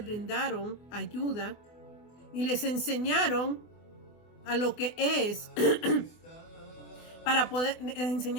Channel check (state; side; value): late; right; 24 ms